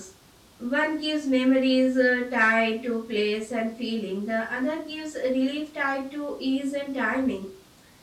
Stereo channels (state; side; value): identical; both; correlation 1.00